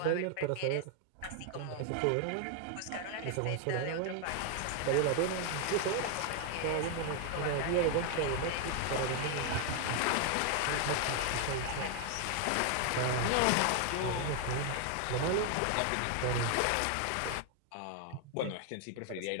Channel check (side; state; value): both; different; correlation 0.00